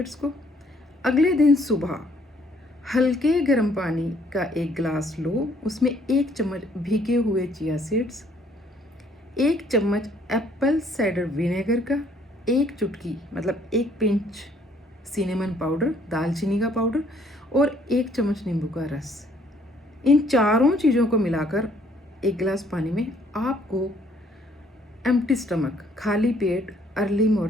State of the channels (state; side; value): normal; both; correlation 0.63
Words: को। अगले दिन सुबह हल्के गर्म पानी का एक गिलास लो, उसमें 1 चम्मच भीगे हुए चिया सीड्स, 1 चम्मच एप्पल साइडर विनेगर का, 1 चुटकी मतलब 1 पिंच सिनेमन पाउडर, दालचीनी का पाउडर और 1 चम्मच नींबू का रस। इन चारों चीज़ों को मिलाकर एक गिलास पानी में आपको एम्प्टी स्टमक, खाली पेट, अर्ली